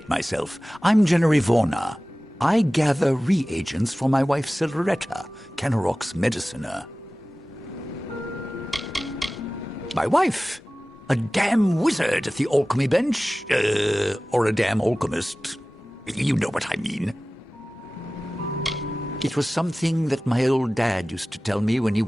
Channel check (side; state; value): both; normal; correlation 0.97